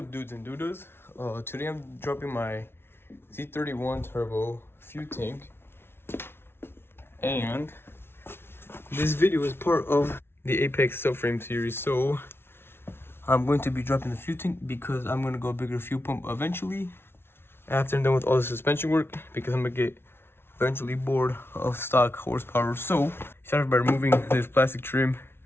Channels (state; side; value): late; right; 0.12 ms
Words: dudes and dudas? Today I'm dropping my Z31 turbo fuel tank, and this video is part of the Apex subframe series. So I'm going to be dropping the fuel tank because I'm going to go a bigger fuel pump eventually after I'm done with all the suspension work, because I'm going to get eventually bored of stock horsepower. So started by removing this plastic trim,